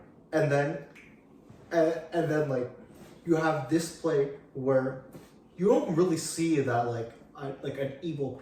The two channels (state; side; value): identical; both; correlation 1.00